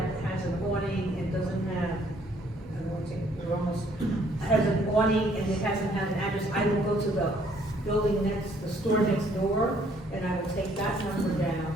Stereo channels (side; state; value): both; normal; correlation 0.64